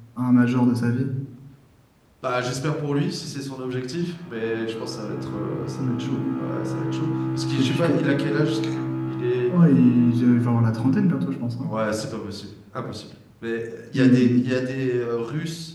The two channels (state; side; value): identical; both; correlation 1.00